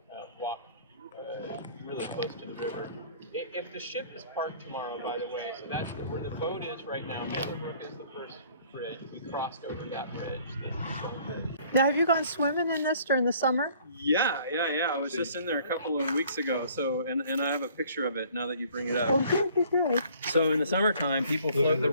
walk really close to the river. If the ship is parked tomorrow, by the way, so that's where the boat is right now. Mittlerbrücke is the first bridge. We crossed over that bridge. Now, have you gone swimming in this during the summer? Yeah. I was just in there a couple of weeks ago. So, and I have a picture of it now that you bring it up. Oh, good. So in the summertime, people float the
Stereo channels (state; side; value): inverted; both; correlation -0.55